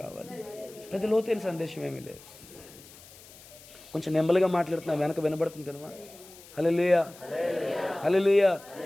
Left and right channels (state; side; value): noise; left; hiss, 20 dB below the sound